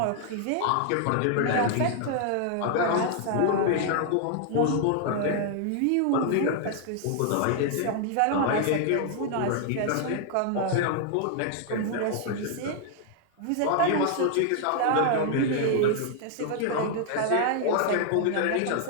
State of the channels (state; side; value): different; both; correlation 0.00